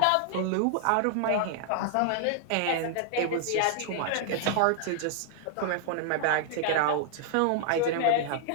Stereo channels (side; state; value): both; different; correlation -0.01